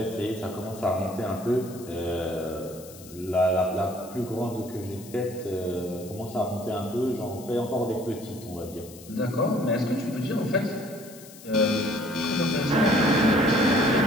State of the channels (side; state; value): left; noise; hiss, 19 dB below the sound